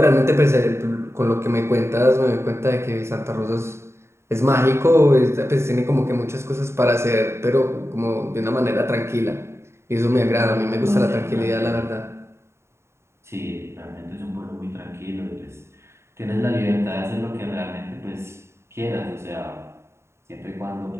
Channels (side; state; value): left; late; 0.13 ms